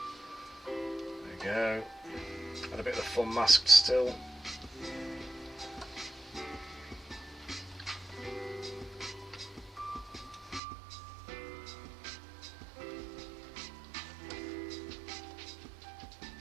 we go. Had a bit of the fun masked still.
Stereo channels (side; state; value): left; drops out; at 10.6 s